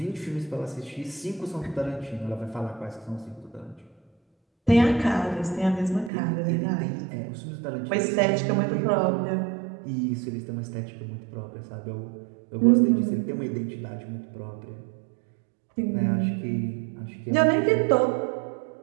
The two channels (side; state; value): left; drops out; at 6.1 s